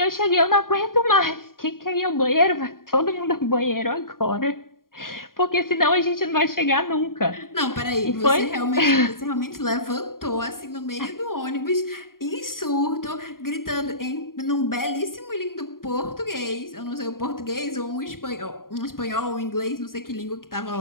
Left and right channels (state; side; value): late; right; 0.91 ms